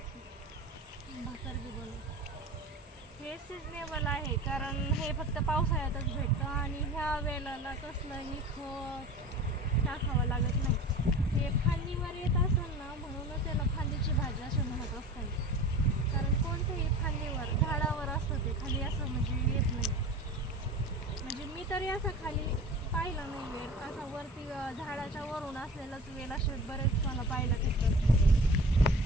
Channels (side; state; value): both; normal; correlation 0.38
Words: हे सिजनेबल आहे, कारण हे फक्त पावसाळ्यातच भेटतं आणि ह्या वेळेला कसलंही खत टाकावं लागत नाही. हे फांदीवर येत असेल ना, म्हणूनच त्याला फांदीची भाजी असे म्हणत असतात. कारण कोणतेही फांदीवर झाडावर असतं, ते खाली असं म्हणजे येत नाही. म्हणजे मी तरी असं खाली पाहिलं नाही वेल, असा वरती झाडाच्या वरून असलेलाच वेल असे बरेच मला पाहायला भेटतात.